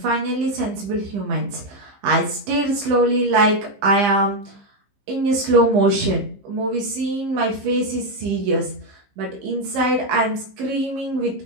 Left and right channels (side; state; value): left; late; 15 ms